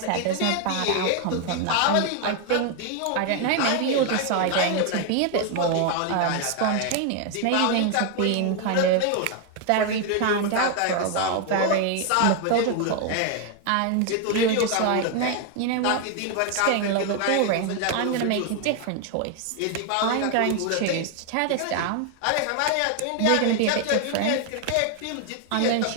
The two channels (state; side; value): different; both; correlation 0.01